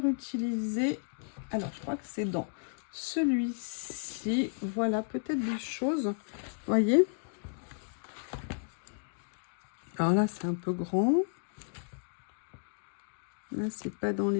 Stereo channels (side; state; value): right; silent; digital silence